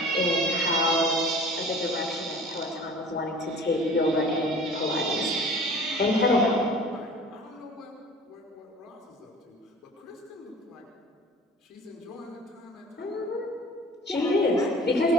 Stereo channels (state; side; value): normal; both; correlation 0.44